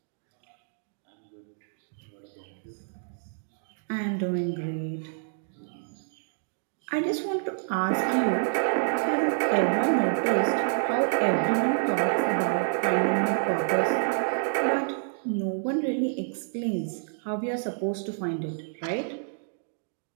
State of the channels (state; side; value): silent; left; digital silence